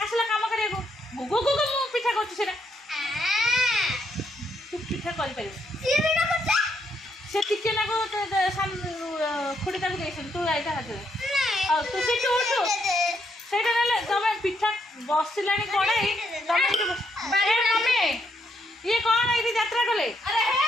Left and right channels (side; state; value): both; normal; correlation 0.76